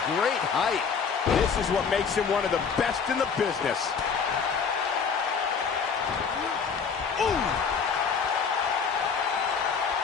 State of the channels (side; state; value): right; quieter; 6.1 dB